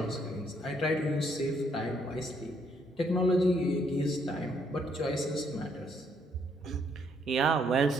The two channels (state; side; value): normal; both; correlation 0.70